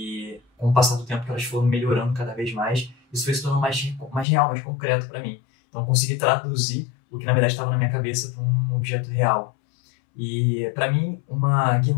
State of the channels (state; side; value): drops out; right; at 4.2 s